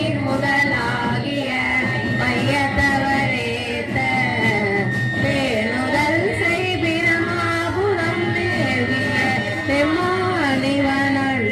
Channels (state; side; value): identical; both; correlation 1.00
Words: முதலாகிய மையத்தவரேத்த பேணுதல் செய் பிரமாபுரம் மேவிய